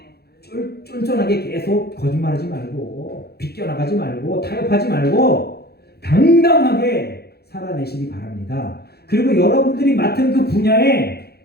쫀쫀하게 계속 거짓말하지 말고 비껴나가지 말고 타협하지 말고 당당하게 살아내시기 바랍니다. 그리고 여러분들이 맡은 그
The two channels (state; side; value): late; right; 0.46 ms